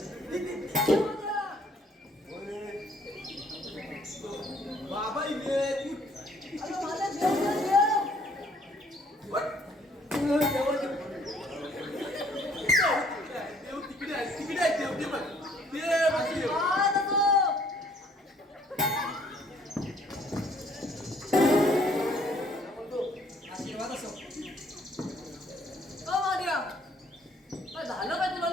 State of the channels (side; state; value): both; normal; correlation 0.62